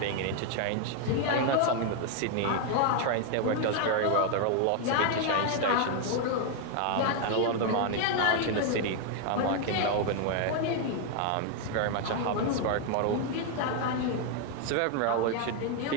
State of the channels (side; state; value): both; different; correlation 0.00